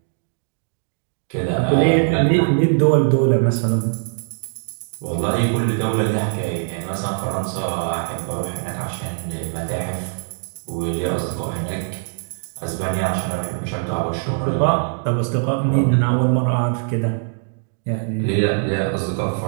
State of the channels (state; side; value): silent; left; digital silence